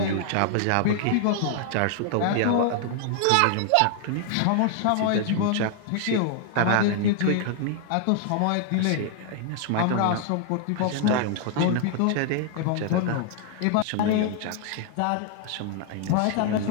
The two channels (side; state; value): both; different; correlation 0.00